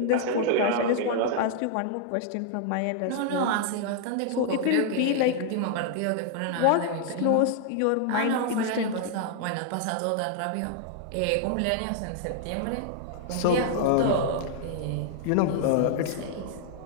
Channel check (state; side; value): different; both; correlation 0.00